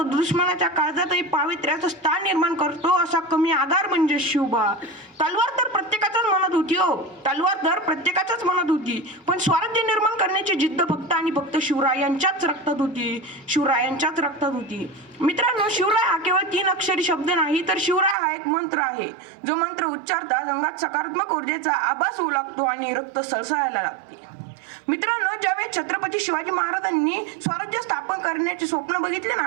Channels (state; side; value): drops out; left; at 18.2 s